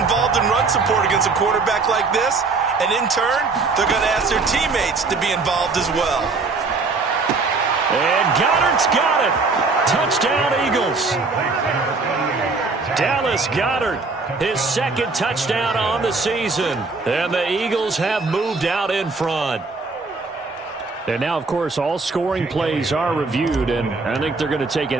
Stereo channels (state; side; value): quieter; left; 4.1 dB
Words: in run support against a quarterback like this. And in turn, they're going to ask their teammates to be involved as well. And Goddard's got it. Touchdown, Eagles. Dallas Goedert, his 2nd touchdown on the season. And the Eagles have moved out in front. And now, of course, all scoring plays are reviewed, and I think they're going to take